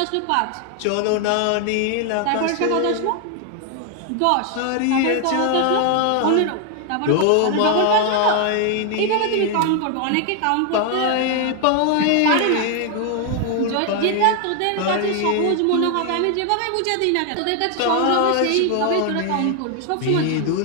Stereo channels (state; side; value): different; both; correlation 0.00